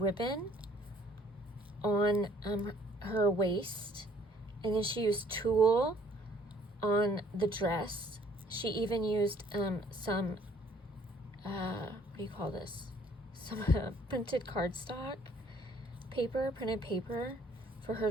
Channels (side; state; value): both; normal; correlation 0.60